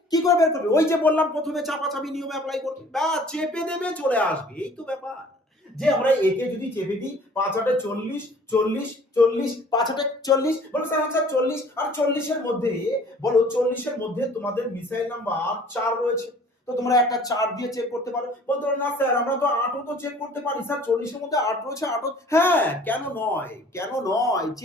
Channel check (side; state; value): both; normal; correlation 0.52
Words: কি করে বের করবে? ওই যে বললাম প্রথমে চাপাচাপি নিয়ম অ্যাপ্লাই করবে, বা চেপে দেবে চলে আসবে, এই তো ব্যাপার। যে আমরা একে যদি চেপে দিই 5 8 40 40 40 5 8 40, বলো স্যার আচ্ছা 40 আর 40 এর মধ্যে, বলো 40 এর মধ্যে তোমাদের মিসাইল নাম্বার 4 রয়েছে, তো তোমরা একটা 4 দিয়ে চেক করতে পারো। বলতে পারো না স্যার আমরা তো 8ও তো চেক করতে পারি, স্যার 40 এর মধ্যে 8 রয়েছে, 8ও হ্যাঁ, কেন নয়, কেন নয়,